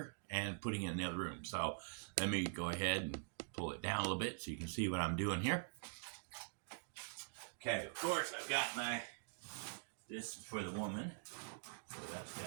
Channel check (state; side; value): silent; left; digital silence